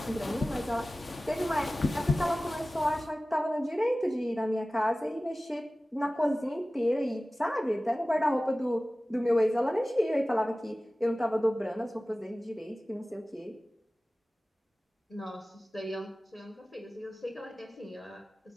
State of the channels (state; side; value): normal; both; correlation 0.97